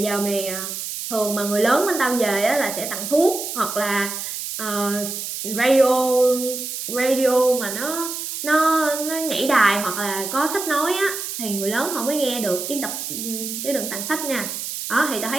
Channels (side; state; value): right; noise; hiss, 6 dB below the sound